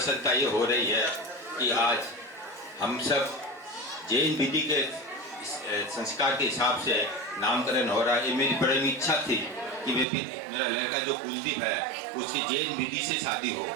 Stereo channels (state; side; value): drops out; left; at 10.1 s